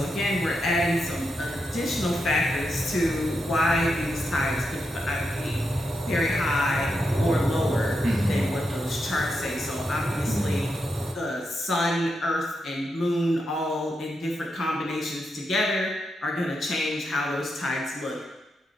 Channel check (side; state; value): both; normal; correlation 0.85